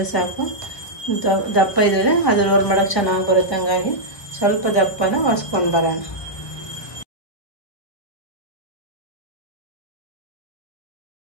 ಸಾಕು. ದಪ್ಪ ಇದ್ದರೆ ಅದು ರೋಲ್ ಮಾಡೋಕ್ಕೆ ಚೆನ್ನಾಗಿ ಬರುತ್ತೆ, ಹಂಗಾಗಿ ಸ್ವಲ್ಪ ದಪ್ಪನ ಒರೆಸ್ಕೊಂಡು ಬರೋಣ.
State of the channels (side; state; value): right; late; 1.4 ms